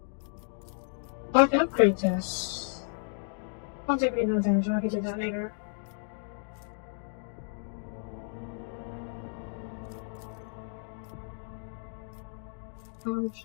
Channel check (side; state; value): right; silent; digital silence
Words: I can upgrade this. I'll take no damage, I can do that later.